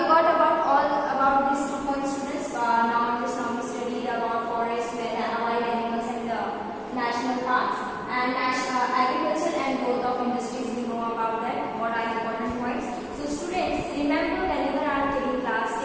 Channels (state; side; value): identical; both; correlation 1.00